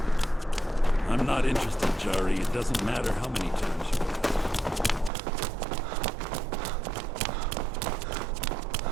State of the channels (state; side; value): drops out; left; at 5.1 s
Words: I'm not interested, Jari. It doesn't matter how many times you ask.